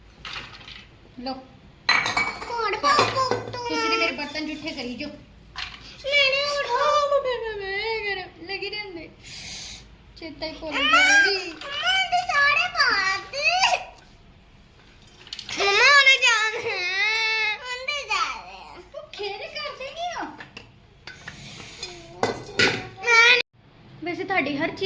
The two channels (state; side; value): identical; both; correlation 1.00